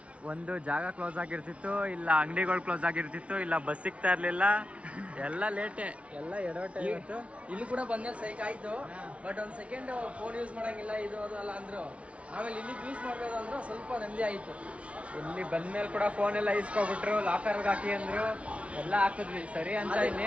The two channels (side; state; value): left; late; 0.062 ms